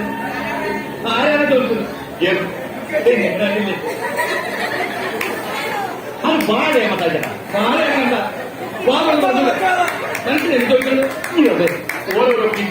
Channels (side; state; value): both; identical; correlation 1.00